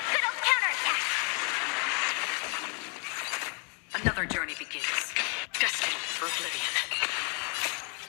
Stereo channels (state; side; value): quieter; right; 36.9 dB